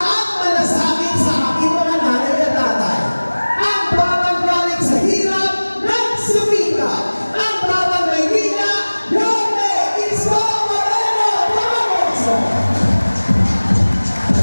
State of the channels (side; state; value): both; inverted; correlation -1.00